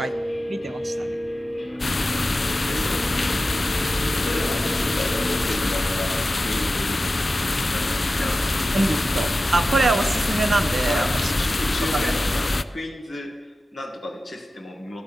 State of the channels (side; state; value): both; normal; correlation 0.94